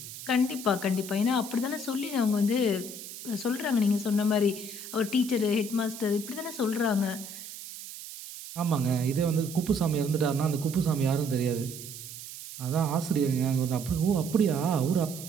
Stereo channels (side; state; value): right; noise; hiss, 12 dB below the sound